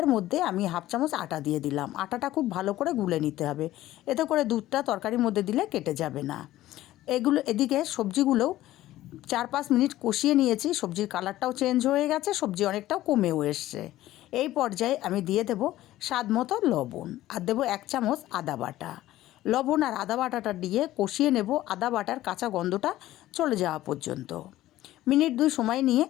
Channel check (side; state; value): right; quieter; 15.1 dB